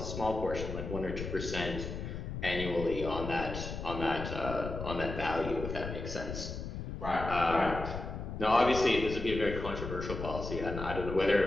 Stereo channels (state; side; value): noise; left; rumble, 6 dB below the sound